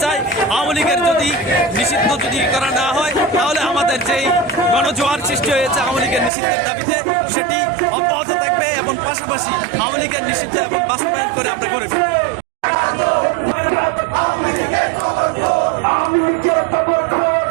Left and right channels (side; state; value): left; drops out; at 6.3 s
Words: চাই, আওয়ামী লীগের যদি নিষিদ্ধ যদি করা না হয় তাহলে আমাদের যেই গণজোয়ার সৃষ্টি হয়েছে আওয়ামী লীগের নিষিদ্ধের দাবিতে সেটি অব্যাহত থাকবে এবং পাশাপাশি আওয়ামী লীগের নিষিদ্ধ এবং বাস্তবায়ন করে আমরা করে ফেলব।